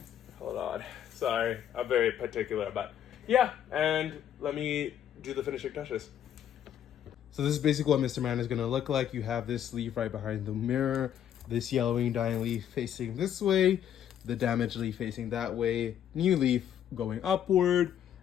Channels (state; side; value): quieter; right; 10.0 dB